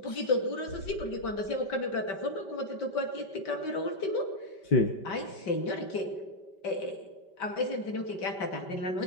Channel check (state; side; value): late; right; 5.2 ms